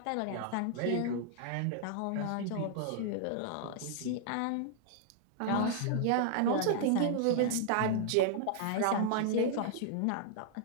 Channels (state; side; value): different; both; correlation -0.01